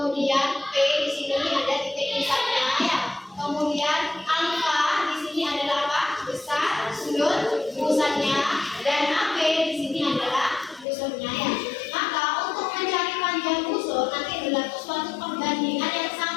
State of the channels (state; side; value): drops out; right; at 10.9 s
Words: P di sini ada titik pusatnya ya. Kemudian alfa di sini adalah apa? Besar sudut pusatnya, dan AP di sini adalah busurnya ya. Maka untuk mencari panjang busur nanti berlaku suatu perbandingan yang